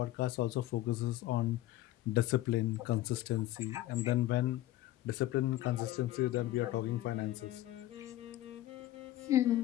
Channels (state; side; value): quieter; right; 15.0 dB